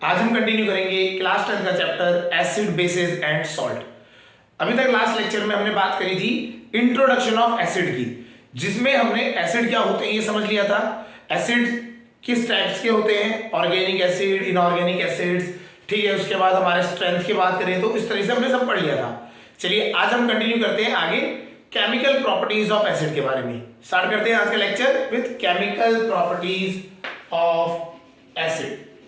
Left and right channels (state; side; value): identical; both; correlation 1.00